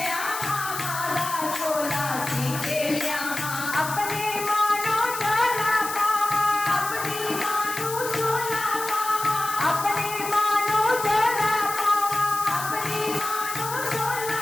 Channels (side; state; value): left; noise; hiss, 8 dB below the sound